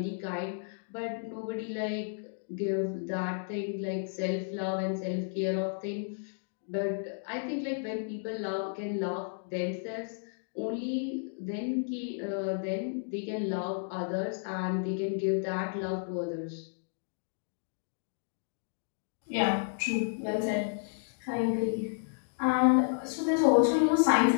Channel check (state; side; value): silent; right; digital silence